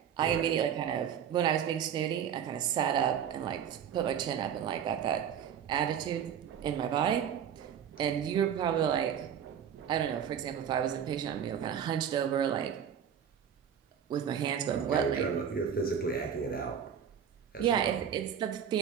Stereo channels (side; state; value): left; quieter; 8.5 dB